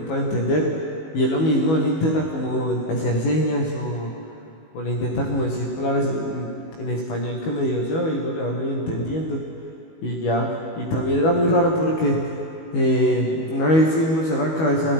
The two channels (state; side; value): late; right; 19 ms